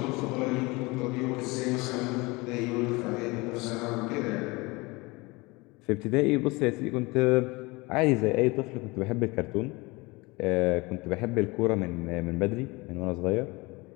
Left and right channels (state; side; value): quieter; right; 24.4 dB